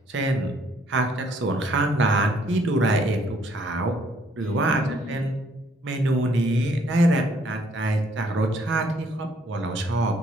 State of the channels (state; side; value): normal; both; correlation 0.65